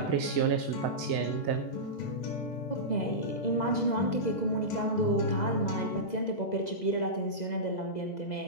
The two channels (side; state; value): right; late; 2.0 ms